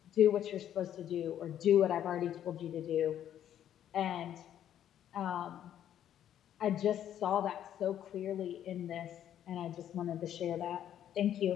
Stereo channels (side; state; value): right; quieter; 10.6 dB